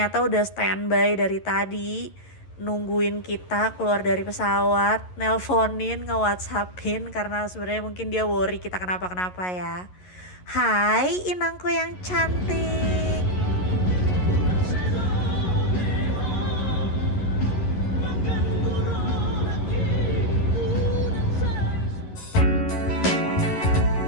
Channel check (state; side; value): late; right; 11 ms